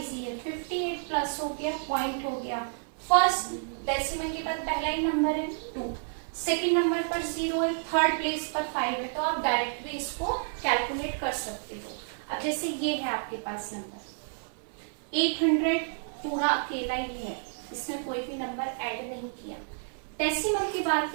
है, 58 प्लस हो गया, पॉइंट हो गया, फर्स्ट डेसिमल के बाद पहला ही नंबर है 2, सेकंड नंबर पर 0 है, थर्ड प्लेस पर 5 है, तो आप डायरेक्ट भी इसको कैलकुलेट कर सकते हो। अब जैसे ये है आपके पास नंबर 800 पूरा अकेला ही है, इसमें कोई भी नंबर ऐड नहीं किया, डेसिमल के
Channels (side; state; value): left; silent; 58 dB below the other